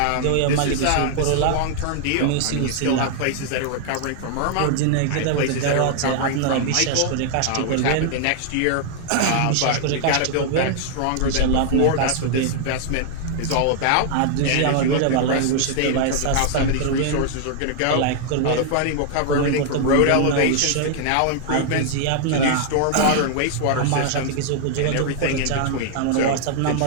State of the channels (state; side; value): different; both; correlation 0.00